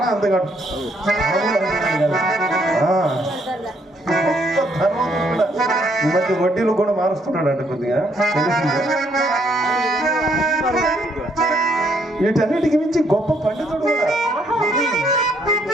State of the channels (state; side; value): normal; both; correlation 0.70